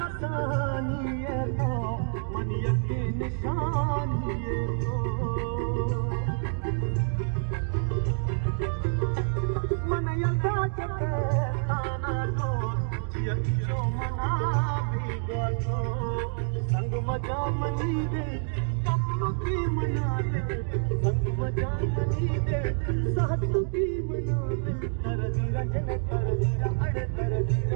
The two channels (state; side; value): silent; left; digital silence